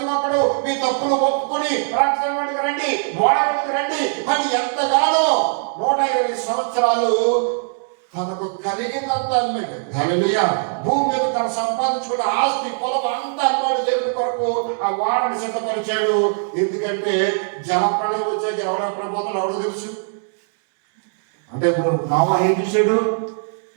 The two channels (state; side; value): silent; left; 65 dB below the other